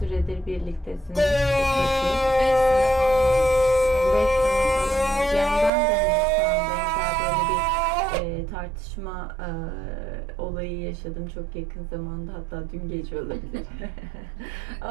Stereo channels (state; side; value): drops out; left; at 5.7 s